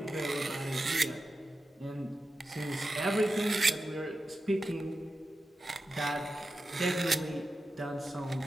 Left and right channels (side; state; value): both; normal; correlation 0.92